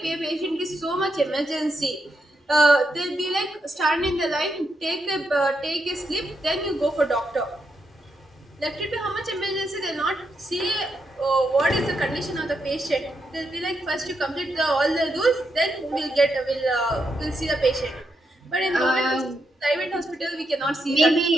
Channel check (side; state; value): both; normal; correlation 0.82